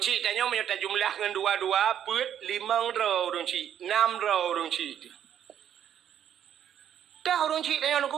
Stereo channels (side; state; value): left; quieter; 9.8 dB